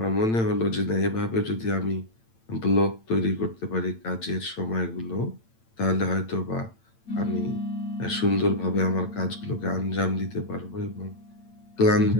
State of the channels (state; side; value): late; right; 8.9 ms